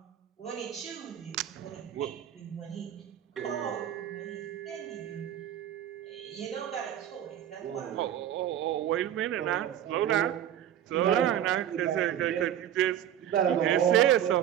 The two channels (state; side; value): quieter; left; 10.7 dB